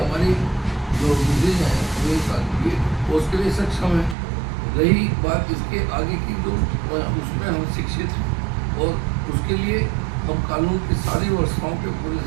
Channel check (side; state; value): left; drops out; at 4.2 s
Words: जो विजय है मेरे साथ ये उसके लिए सक्षम है। रही बात इसके आगे की, जो उसमें हम शिक्षित हैं, और उसके लिए हम कानून की सारी व्यवस्थाओं के पूरे